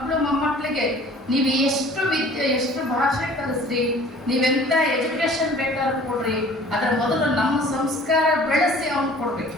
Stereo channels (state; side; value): normal; both; correlation 0.49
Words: ಮೊಮ್ಮಕ್ಕಳಿಗೆ ನೀವು ಎಷ್ಟು ಭಾಷೆ ಕಲಿಸ್ರಿ, ನೀವೆಂಥ ಎಜುಕೇಶನ್ ಬೇಕಾದ್ರೂ ಕೊಡ್ರಿ, ಅದರ ಮೊದಲು ನಮ್ಮ ಸಂಸ್ಕಾರ ಬೆಳೆಸಿ ಅವ್ನು ಕೊಡ್ಬೇಕು.